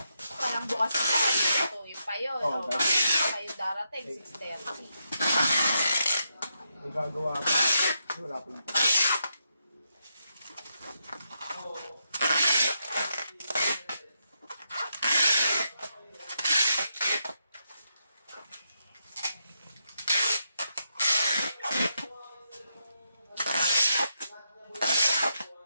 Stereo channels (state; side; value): inverted; both; correlation -0.82